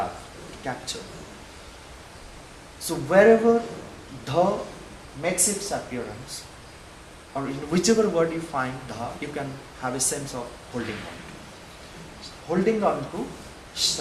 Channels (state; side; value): identical; both; correlation 1.00